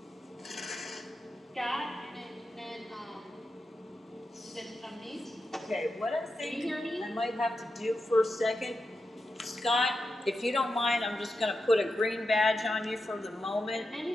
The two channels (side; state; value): both; normal; correlation 0.89